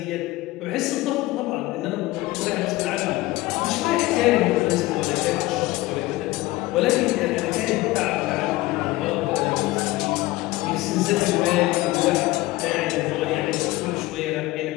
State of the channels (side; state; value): right; quieter; 19.0 dB